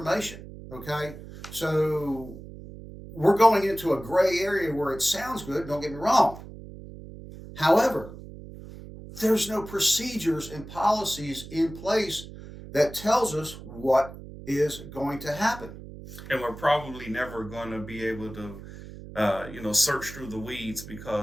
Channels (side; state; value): right; noise; hum, 14 dB below the sound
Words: Okay? So we're going into a gray area where it sounds good, don't get me wrong. However, there's no procedures and policies in place that tells us what is going to happen. And we're probably never going to be able to, search through the weeds,